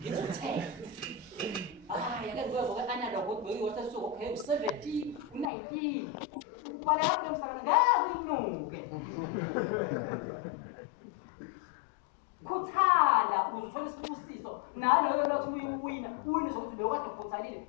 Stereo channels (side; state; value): right; drops out; at 5.5 s